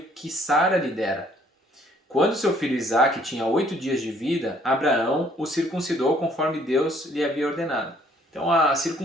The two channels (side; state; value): both; normal; correlation 0.62